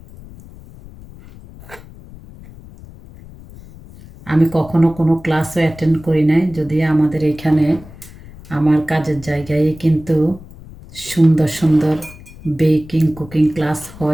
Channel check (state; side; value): noise; left; rumble, 19 dB below the sound